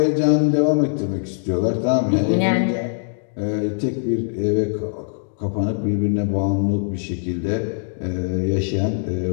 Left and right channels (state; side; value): silent; right; digital silence